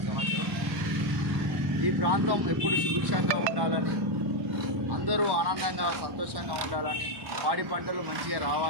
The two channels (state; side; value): late; left; 1.1 ms